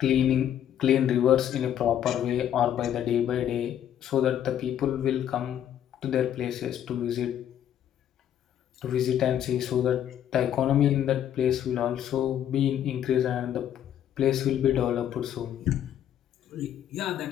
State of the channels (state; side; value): quieter; right; 10.4 dB